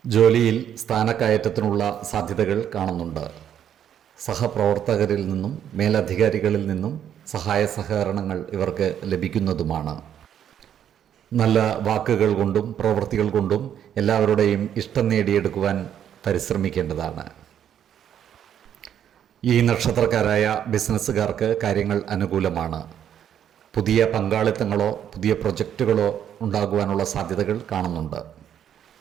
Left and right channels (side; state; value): left; quieter; 9.6 dB